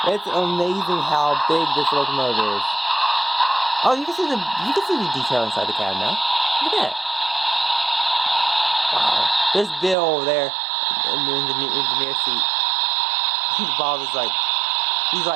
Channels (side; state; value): left; drops out; at 10.0 s